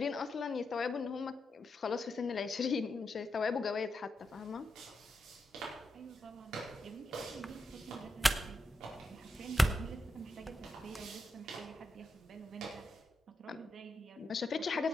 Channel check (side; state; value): both; normal; correlation 0.86